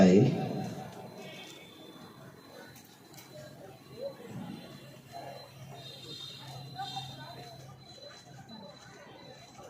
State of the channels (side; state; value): both; identical; correlation 1.00